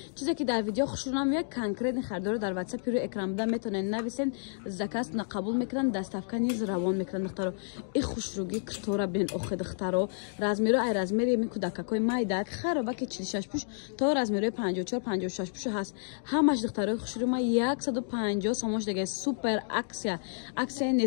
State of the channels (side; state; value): right; silent; digital silence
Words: چیزی که در ویدیو خشرونم یک کانکریت خریدار در واتساپ روی اکران بوده میتونین نویسین زکات قبول میکنن دستافکا نیز روان میکنن ای خوشروگی کتورا بین اخ دخترو رزمیرو ای رزمیری می کودککای مایدک خرابه که 46 پوش تا رزمیرو 54 56 پوش هست همش دخترای خوشرو ما 150 سومش دیگه سوپر اکسیا